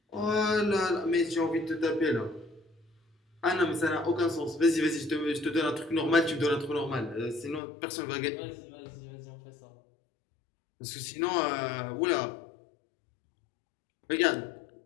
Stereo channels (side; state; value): right; drops out; at 7.6 s